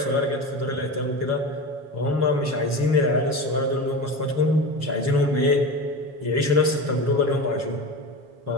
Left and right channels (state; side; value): late; left; 7.2 ms